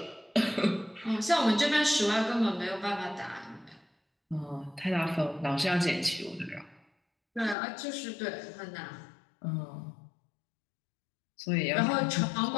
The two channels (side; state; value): right; drops out; at 7.6 s